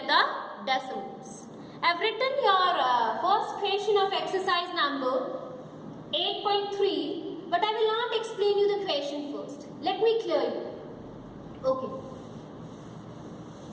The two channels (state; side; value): identical; both; correlation 1.00